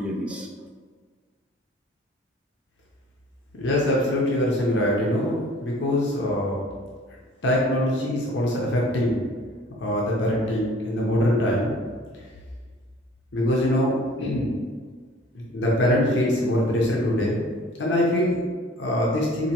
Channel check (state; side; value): normal; both; correlation 0.50